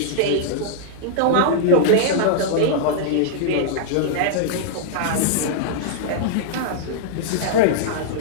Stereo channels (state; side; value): different; both; correlation -0.01